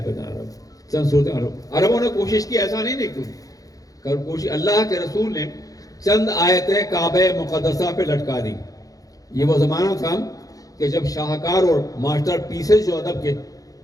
بتا رہا ہوں, چند صورتیں. عربوں نے کوشش کی, ایسا نہیں دیکھو کوشش, اللہ کے رسول نے چند آیتیں کعبہ مقدسہ پہ لٹکا دی. یہ وہ زمانہ تھا کہ جب شاہکار اور ماسٹر پیسز جو ادب کے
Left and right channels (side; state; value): right; late; 0.17 ms